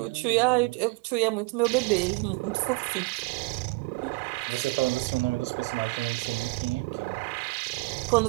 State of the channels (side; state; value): left; quieter; 26.2 dB